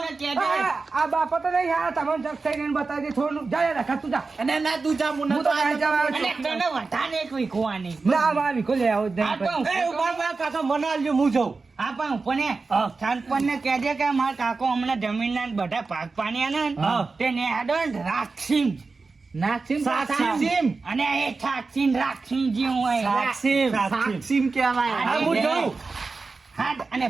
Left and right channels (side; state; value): left; quieter; 4.1 dB